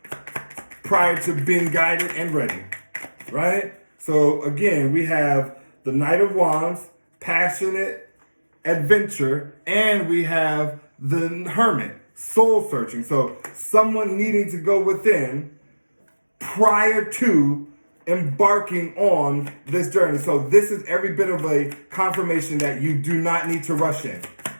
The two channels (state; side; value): inverted; both; correlation -1.00